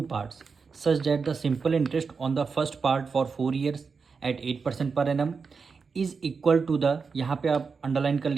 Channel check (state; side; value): quieter; left; 5.2 dB